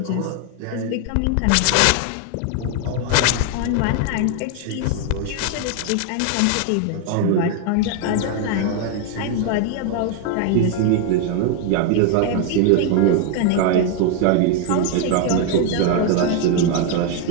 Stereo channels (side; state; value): both; different; correlation 0.01